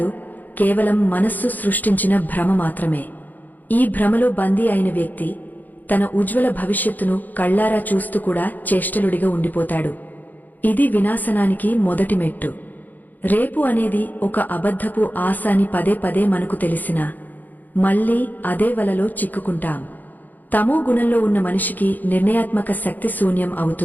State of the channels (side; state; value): right; late; 0.084 ms